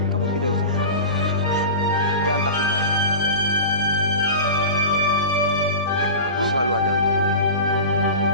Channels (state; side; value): inverted; both; correlation -0.31